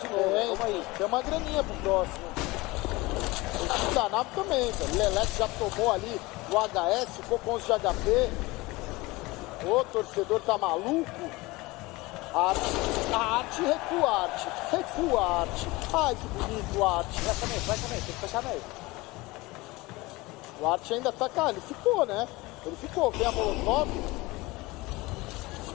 de novo. Vamos aí. Tem uma graninha pro próximo. O time da nave também, velho. Leleque já tomou ali o HS, ficou com 11 de HP. O torcedor tá maluco. Arte, recua, Arte. Recua, Arte. Ai, que bonito, Arte. Vai também, tem que fechar meio. O Arte ainda tá, cara, ele ficou, né? Ele ficou, vem a molotov,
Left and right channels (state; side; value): quieter; right; 22.0 dB